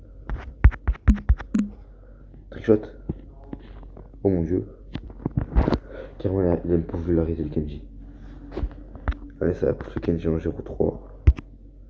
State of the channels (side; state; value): both; identical; correlation 1.00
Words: Trickshot. Oh mon dieu. Carrément, il a une popularité le Kenji. Allez, ça va pour ce Kenji en 0-3.